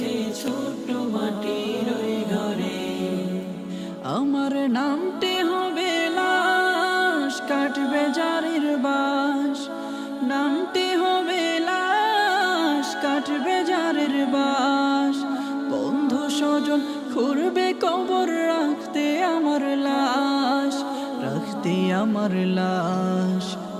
ছোট মাটির ওই ঘরে। আমার নামটি হবে লাশ, কাটবে জারির বাস। নামটি হবে লাশ, কাটবে জারির বাস। বন্ধু স্বজন খুঁড়বে কবর, রাখতে আমার লাশ, রাখতে আমার লাশ।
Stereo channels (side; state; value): both; identical; correlation 1.00